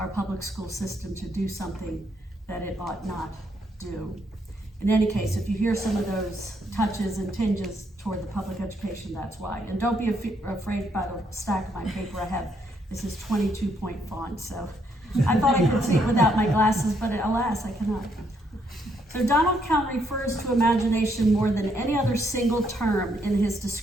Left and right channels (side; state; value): both; normal; correlation 0.73